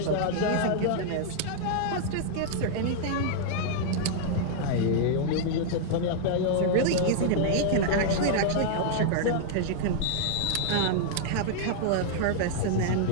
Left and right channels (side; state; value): both; different; correlation -0.01